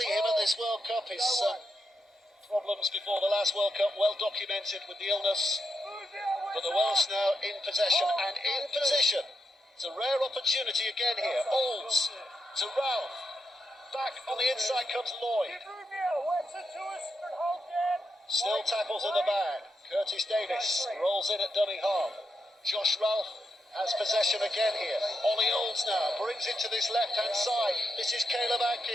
him at this World Cup. His problems before the last World Cup well documented with the illness. But the Welsh now in possession and in position. It's a rare opportunity again here. Olds to Ralph. Back on the inside comes Lloyd. Still tackles in the bag. Curtis Davis rolls in at dummy half. Josh Ralph has possession again here. Ollie Olds now brings it to this left-hand side. This is Caleb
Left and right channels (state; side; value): normal; both; correlation 0.83